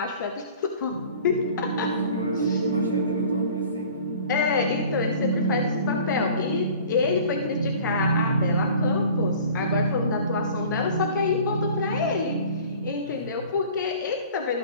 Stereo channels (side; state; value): both; inverted; correlation -0.46